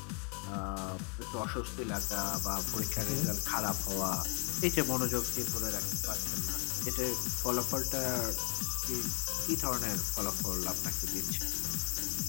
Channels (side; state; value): right; quieter; 36.2 dB